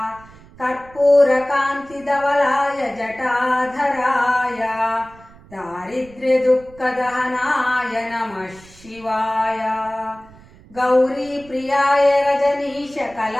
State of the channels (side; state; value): right; noise; rumble, 23 dB below the sound